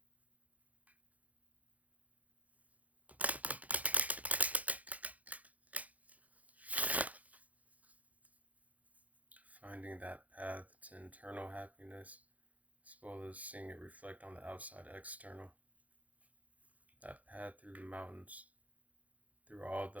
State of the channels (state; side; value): late; left; 0.073 ms